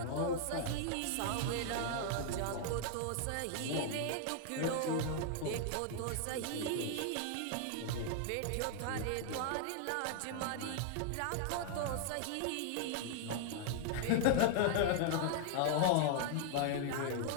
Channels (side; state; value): both; different; correlation 0.00